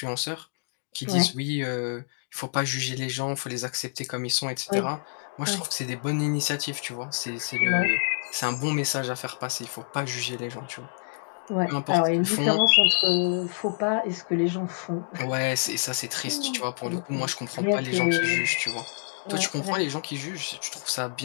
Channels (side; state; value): right; silent; digital silence